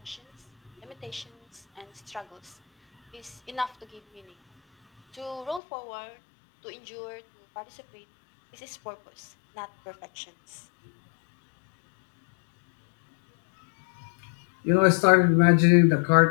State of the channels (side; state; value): right; drops out; at 5.6 s